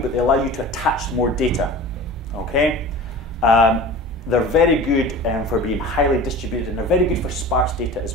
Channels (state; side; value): normal; both; correlation 0.37